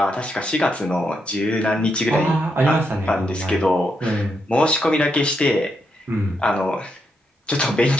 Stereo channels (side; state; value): both; normal; correlation 0.81